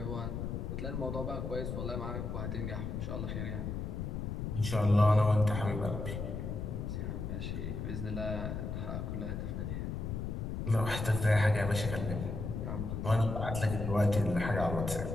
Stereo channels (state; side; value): noise; left; rumble, 4 dB below the sound